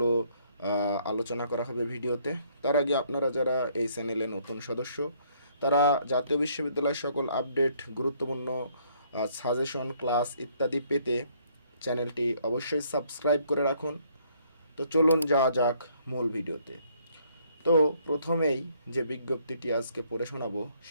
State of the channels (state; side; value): inverted; both; correlation -0.66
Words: আলোচনা করা হবে ভিডিওতে। তার আগে আপনারা যারা এই চ্যানেলে নতুন সদস্য, তারা জাতীয় বিশ্ববিদ্যালয়ের সকল আপডেট, গুরুত্বপূর্ণ সাজেশন, ক্লাস ইত্যাদি পেতে চ্যানেলটি অবশ্যই সাবস্ক্রাইব করে রাখুন। তো চলুন যাওয়া যাক মূল ভিডিওতে। তো প্রথমেই যে বিজ্ঞপ্তিটি আজকে পড়ে শোনাবো